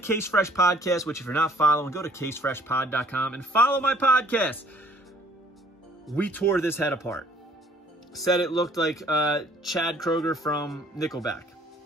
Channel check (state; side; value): normal; both; correlation 0.58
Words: Fresh podcast, which if you're not following, go to casefreshpod.com and follow my podcast. We tore this head apart. Said it looked like Chad Kroger from Nickelback.